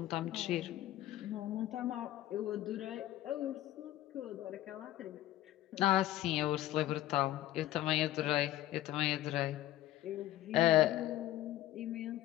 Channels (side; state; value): right; quieter; 14.6 dB